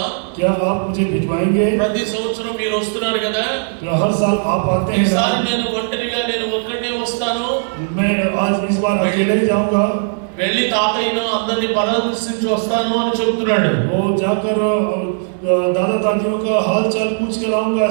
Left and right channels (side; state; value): left; silent; digital silence